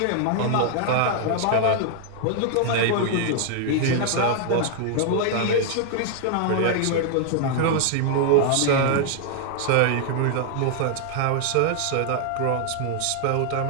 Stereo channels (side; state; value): both; different; correlation 0.00